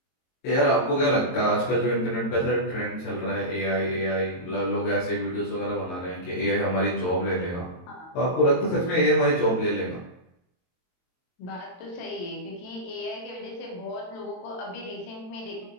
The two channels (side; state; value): right; late; 22 ms